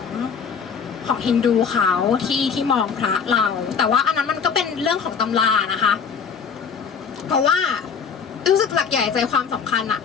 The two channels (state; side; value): quieter; right; 6.4 dB